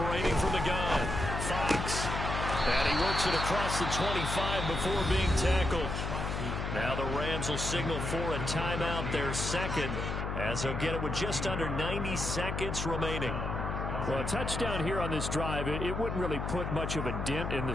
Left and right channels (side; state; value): left; noise; hum, 3 dB below the sound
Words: from the gun, Fox. And he works it across the 25 before being tackled. Now the Rams will signal for a timeout, their 2nd, as they'll get it with just under 90 seconds remaining. Well, a touchdown here on this drive, it wouldn't really put much of a dent in the